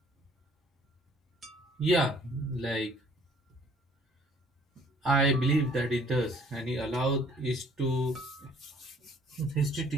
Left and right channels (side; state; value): both; normal; correlation 0.58